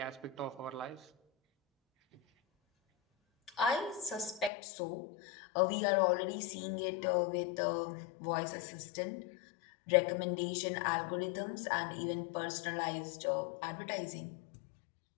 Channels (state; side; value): drops out; right; at 4.5 s